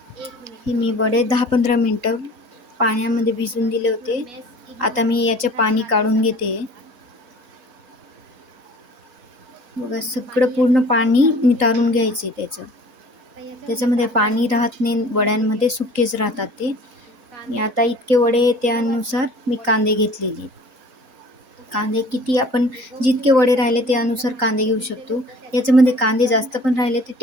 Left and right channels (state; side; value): late; left; 3.8 ms